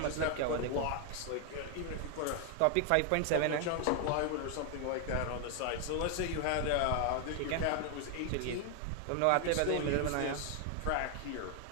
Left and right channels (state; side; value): different; both; correlation 0.00